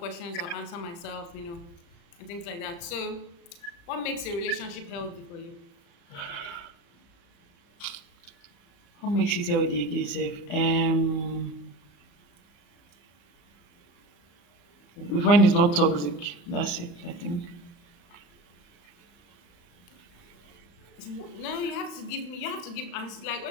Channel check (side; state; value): right; late; 35 ms